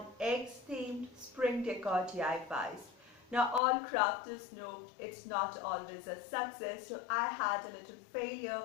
eggs themed spring decor DIYs. Now all crafters know it's not always a success, so I had a little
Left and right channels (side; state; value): right; drops out; at 3.6 s